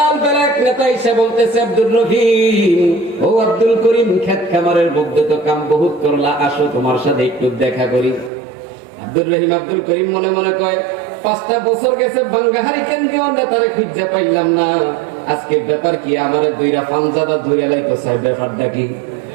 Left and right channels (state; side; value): drops out; left; at 8.3 s